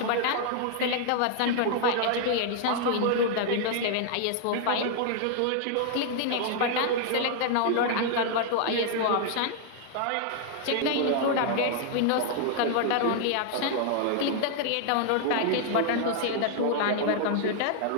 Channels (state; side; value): different; both; correlation 0.00